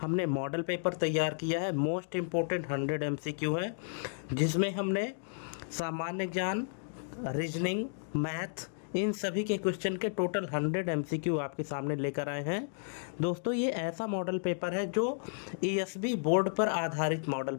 हमने मॉडल पेपर तैयार किया है। मोस्ट इम्पोर्टेंट 100 MCQ है, जिसमें हमने सामान्य ज्ञान, रीजनिंग, मैथ, इन सभी के क्वेश्चन के टोटल 100 MCQ आपके सामने लेकर आए हैं। दोस्तों, ये ऐसा मॉडल पेपर है जो ESB बोर्ड पर आधारित मॉडल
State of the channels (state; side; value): silent; right; digital silence